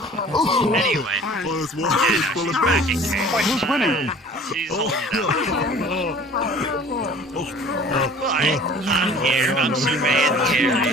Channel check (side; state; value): both; normal; correlation 0.48